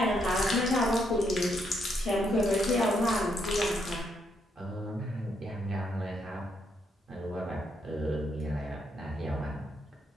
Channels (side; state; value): both; normal; correlation 0.76